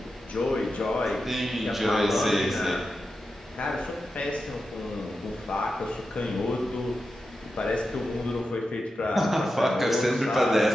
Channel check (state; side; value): normal; both; correlation 0.90